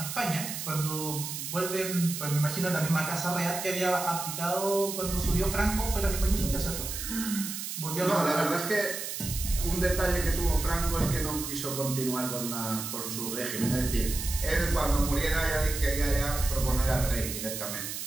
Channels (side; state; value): right; noise; hiss, 6 dB below the sound